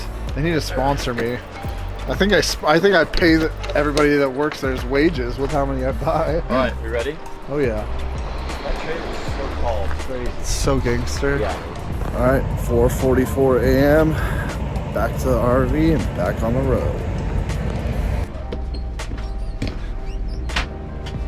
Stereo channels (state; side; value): identical; both; correlation 1.00